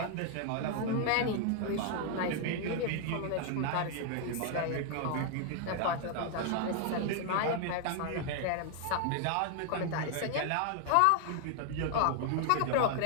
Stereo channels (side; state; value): both; different; correlation 0.00